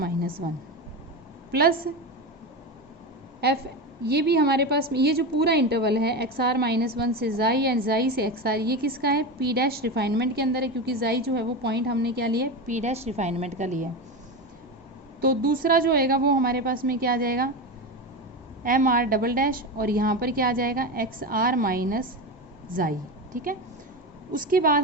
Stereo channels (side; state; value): both; normal; correlation 0.20